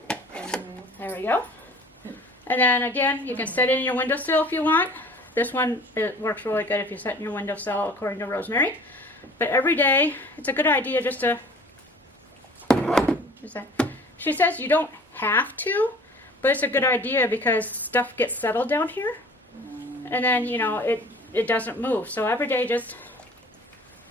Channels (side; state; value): both; normal; correlation 0.48